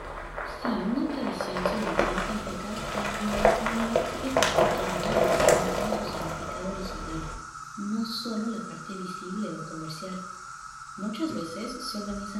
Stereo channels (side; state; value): both; identical; correlation 1.00